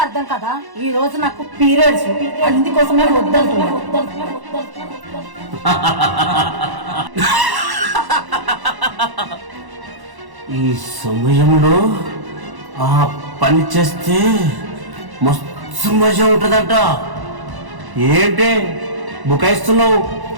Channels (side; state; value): left; late; 1.1 ms